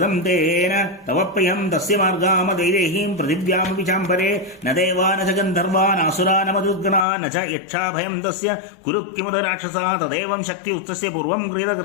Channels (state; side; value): drops out; right; at 7.1 s